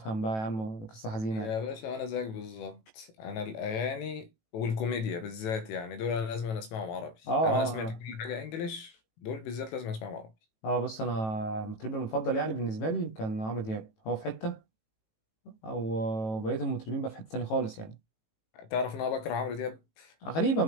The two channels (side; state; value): right; late; 18 ms